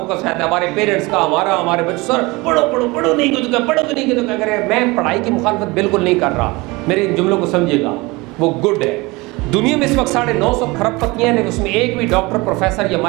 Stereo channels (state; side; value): quieter; left; 23.5 dB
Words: रहता है, हमारे पेरेंट्स का, हमारे बच्चों, सर पढ़ो पढ़ो पढ़ो, नहीं तो क्या पढ़ो, नहीं तो क्या करें। मैं पढ़ाई की मुखालफत बिल्कुल नहीं कर रहा, मेरे इन जुमलों को समझिएगा, वो गुड है। दुनिया में इस वक्त 950 खरबपतियाँ हैं, लेकिन उसमें एक भी डॉक्टर, प्रोफेसर या